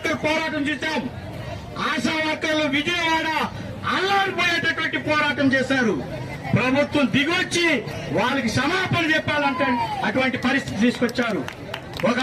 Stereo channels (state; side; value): identical; both; correlation 1.00